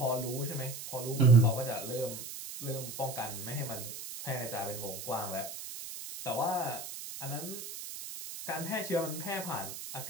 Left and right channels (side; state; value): right; noise; hiss, 9 dB below the sound